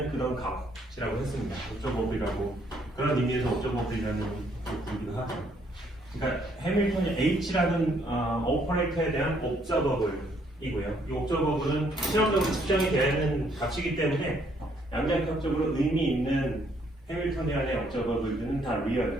그런 값이라고 했습니다. 옵저버블이라고 그런 의미에서 옵저버블이라는 것을 부르기도 하죠. 그러니까 해밀턴이 H라는 오퍼레이터에 대한 옵저버블이고요. 이 옵저버블은 실험적으로 측정이 되는 값이기 때문에 양자역학적으로 의미 있는 해밀턴이안의 옵저버블들은 다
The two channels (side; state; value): both; normal; correlation 0.68